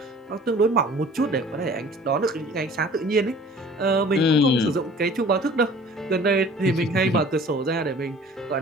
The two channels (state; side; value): normal; both; correlation 0.48